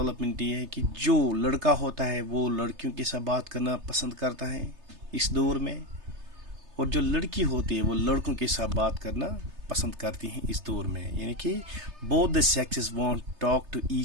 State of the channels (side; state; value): left; late; 3.3 ms